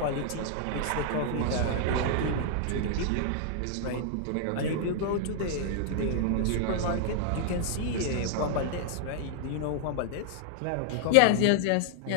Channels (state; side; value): different; both; correlation -0.01